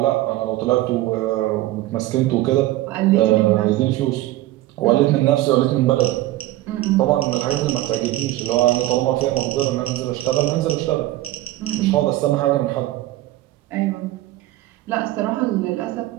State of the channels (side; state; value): left; quieter; 16.0 dB